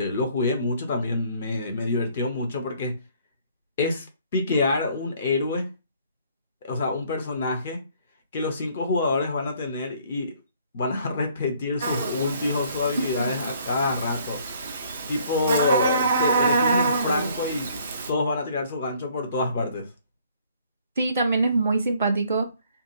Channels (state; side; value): inverted; both; correlation -0.61